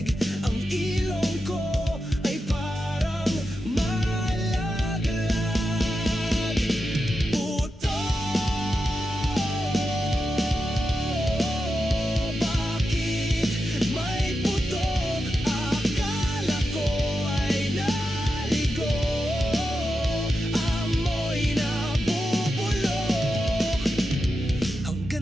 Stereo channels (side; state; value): both; normal; correlation 0.89